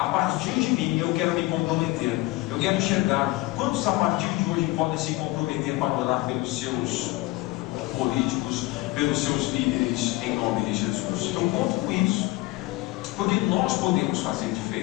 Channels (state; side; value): quieter; right; 20.1 dB